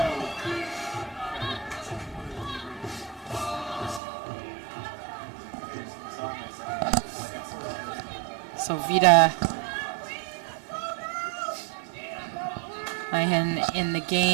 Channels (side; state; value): left; drops out; at 4.0 s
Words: So Vida Nahin in the